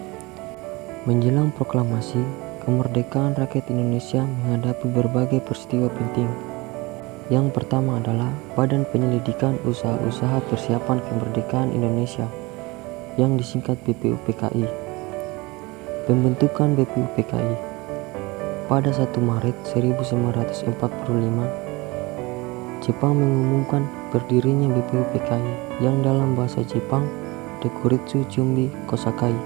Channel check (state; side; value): quieter; left; 23.8 dB